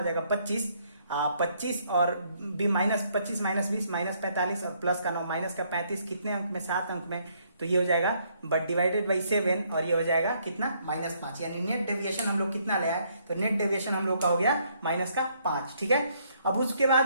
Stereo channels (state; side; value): inverted; both; correlation -0.69